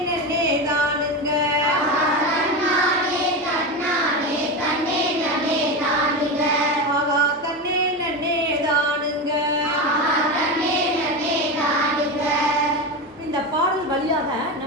நன்னே தானுங்க, தன்னானே தன்னானே தன்னே நமே தானுங்க, ஆகா தன்னே நன்னே தானுங்க. தன்னே நமே தானுங்க. இந்த பாடல் வழியாக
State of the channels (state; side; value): normal; both; correlation 0.19